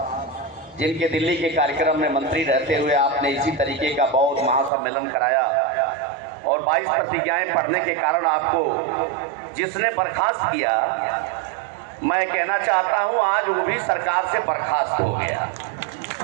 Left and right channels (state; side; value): drops out; left; at 4.7 s